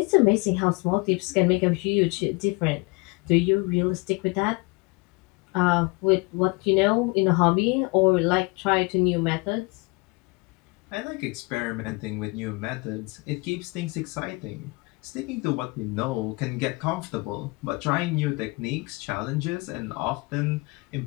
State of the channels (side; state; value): right; quieter; 26.9 dB